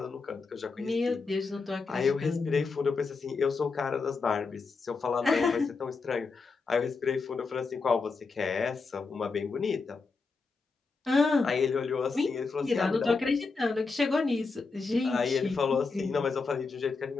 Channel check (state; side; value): quieter; right; 4.4 dB